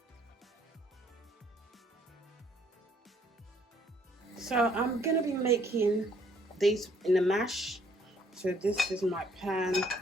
So I'm gonna be making this in a mash. So this is my pan.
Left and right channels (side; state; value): both; normal; correlation 0.65